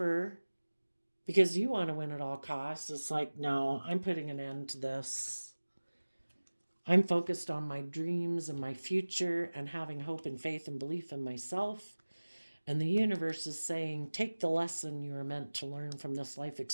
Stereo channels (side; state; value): both; inverted; correlation -1.00